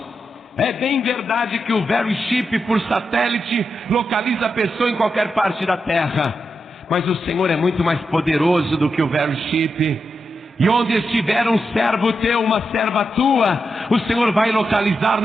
É bem verdade que o Very Chip por satélite localiza a pessoa em qualquer parte da terra, mas o Senhor é muito mais poderoso do que o Very Chip. E onde estiver um servo teu, uma serva tua, o Senhor vai localizar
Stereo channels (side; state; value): both; normal; correlation 0.86